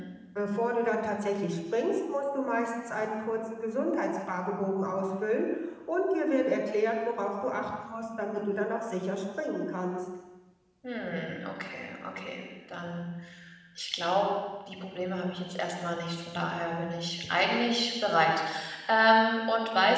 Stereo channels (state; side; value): identical; both; correlation 1.00